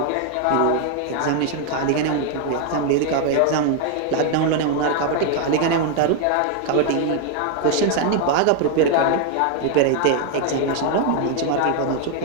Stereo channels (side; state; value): both; different; correlation 0.00